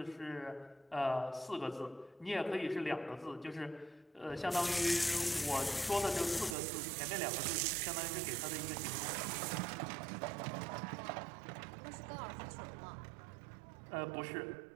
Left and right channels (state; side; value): drops out; left; at 6.6 s